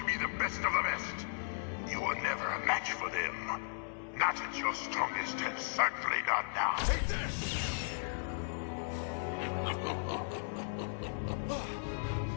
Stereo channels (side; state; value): right; silent; 54 dB below the other